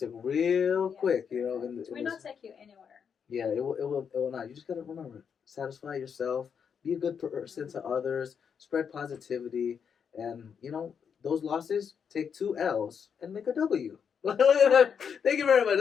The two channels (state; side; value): quieter; right; 7.0 dB